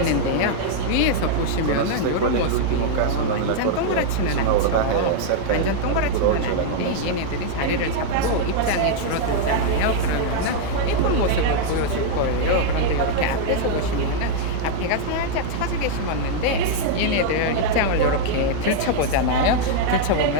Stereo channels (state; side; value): different; both; correlation -0.01